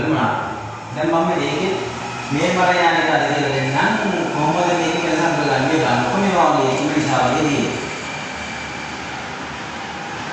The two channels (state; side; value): identical; both; correlation 1.00